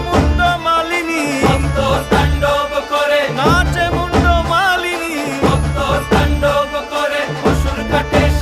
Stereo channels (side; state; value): both; identical; correlation 1.00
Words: মুন্ড মালিনী, মত্ত তাণ্ডব করে, নাচে মুন্ড মালিনী, মত্ত তাণ্ডব করে অসুর কাটে